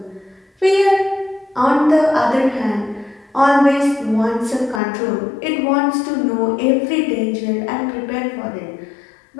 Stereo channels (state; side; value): drops out; right; at 4.8 s